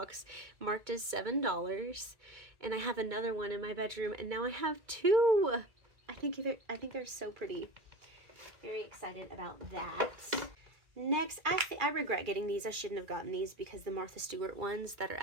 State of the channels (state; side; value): late; left; 2.4 ms